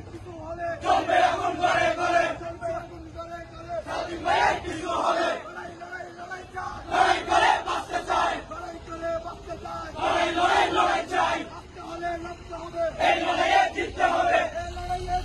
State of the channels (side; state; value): both; identical; correlation 1.00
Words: কিছু হলে চলবে আগুন করে করে চলবে আগুন করে করে সাদিম ভাইয়ের কিছু হলে লড়াই লড়াই লড়াই চাই লড়াই করে বাঁচতে চাই লড়াই করে বাঁচতে চাই লড়াই চাই বাঁচতে হলে লড়তে হবে এই লড়াইয়ে জিততে হবে এই লড়াইয়ে